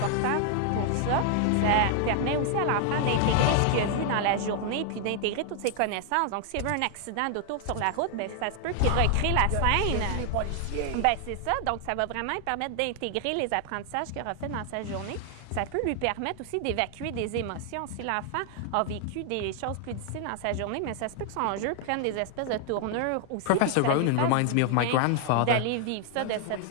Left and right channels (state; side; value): different; both; correlation 0.00